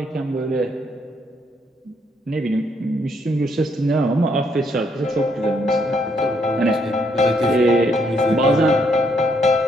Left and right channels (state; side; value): normal; both; correlation 0.72